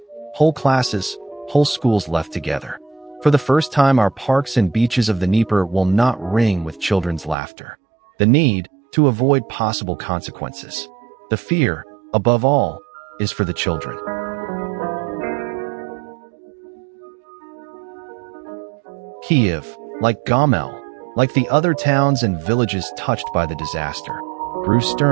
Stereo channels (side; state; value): left; drops out; at 7.4 s